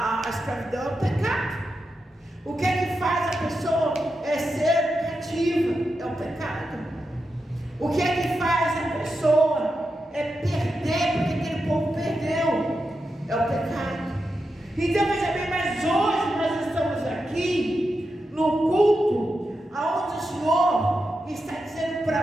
escravidão é o pecado. O que é que faz a pessoa ser cativa? É o pecado. O que é que faz a pessoa perder, porque aquele povo perdeu? É o pecado. Então veja bem, mas hoje nós estamos aqui no culto aonde o Senhor está dizendo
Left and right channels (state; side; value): normal; both; correlation 0.88